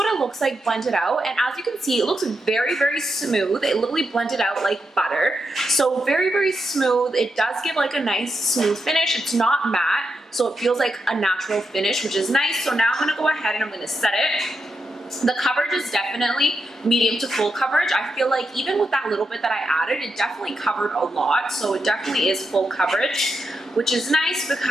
it looks like blended out, and as you can see, it looks very smooth. It literally blended out like butter. So very smooth. It does give like a nice smooth finish. It's not matte, so it feels like a natural finish, which is nice. So now I'm gonna go ahead and I'm gonna set it. The coverage is definitely medium to full coverage. I feel like even with that little bit that I added, it definitely covered a lot. So it definitely is full coverage, which is nice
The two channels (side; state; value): both; normal; correlation 0.85